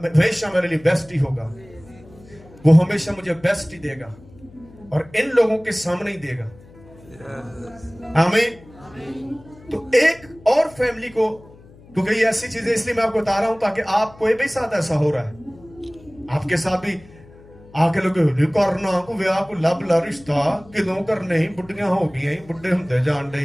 میرے لیے بیسٹ ہی ہوگا. وہ ہمیشہ مجھے بیسٹ ہی دے گا اور ان لوگوں کے سامنے ہی دے گا. آمین. تو ایک اور فیملی کو, کیونکہ یہ ایسی چیزیں اس لیے میں آپ کو بتا رہا ہوں تاکہ آپ کوئی بھی ساتھ ایسا ہو رہا ہے, آپ کے ساتھ بھی آگے لوگ کرنا کو ویاہ کو لب لا رشتہ کدوں کرنے ہی, بڑھیاں ہو گئی, بڑھے ہوندے جان ڈے,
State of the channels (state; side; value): noise; left; hum, 23 dB below the sound